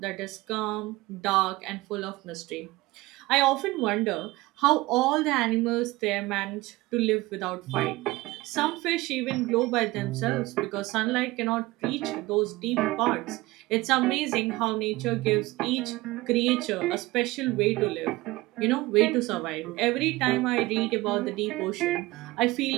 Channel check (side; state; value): left; quieter; 20.2 dB